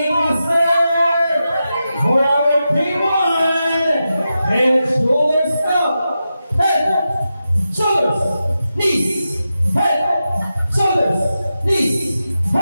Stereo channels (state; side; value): inverted; both; correlation -0.90